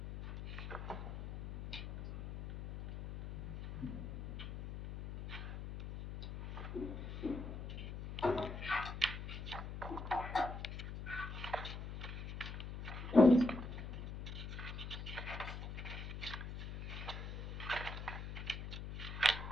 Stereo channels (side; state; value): left; noise; hum, 7 dB below the sound